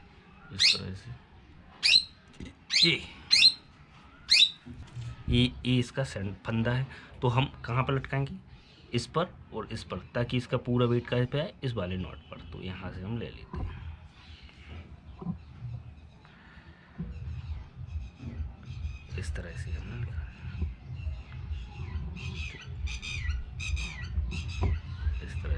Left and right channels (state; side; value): identical; both; correlation 1.00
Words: इस तरह से। ये इसका फंदा है, तो हम कहाँ पर लटकाएंगे, इस पर और इस पर, ताकि इसका पूरा वेट कहाँ पे आए, इस वाले नॉट पर। तो यहाँ से हम ले लेते हैं इस तरह से हमने इस